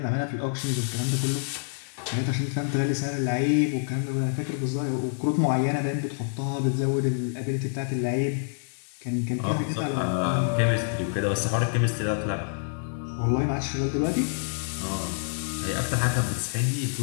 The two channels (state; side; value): silent; right; digital silence